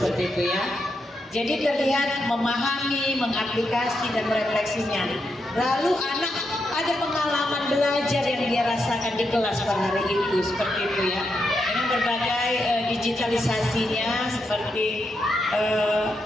itu ya. Jadi terlihat memahami, mengaplikasi dan merefleksinya. Lalu anak ada pengalaman belajar yang dia rasakan di kelas pada hari itu, seperti itu ya. Dengan berbagai digitalisasinya seperti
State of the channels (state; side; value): normal; both; correlation 0.83